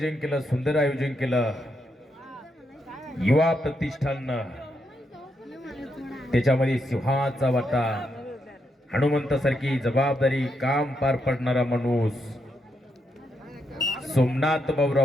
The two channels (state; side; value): normal; both; correlation 0.81